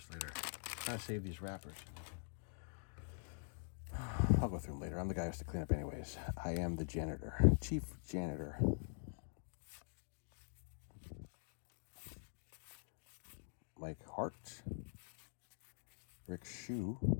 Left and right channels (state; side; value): silent; right; digital silence